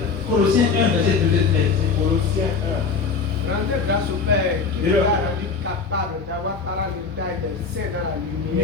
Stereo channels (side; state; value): right; quieter; 5.0 dB